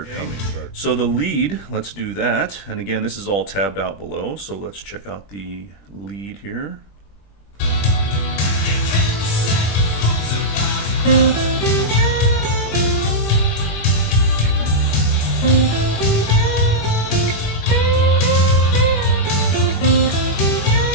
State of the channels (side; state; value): right; late; 20 ms